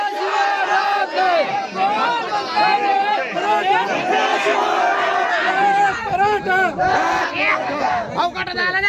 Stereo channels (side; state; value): both; identical; correlation 1.00